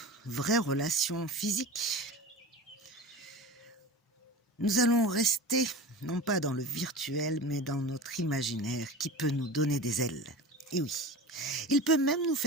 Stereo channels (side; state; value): both; normal; correlation 0.32